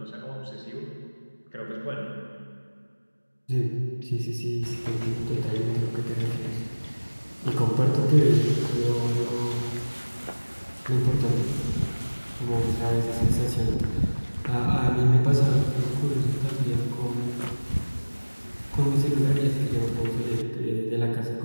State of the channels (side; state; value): both; inverted; correlation -1.00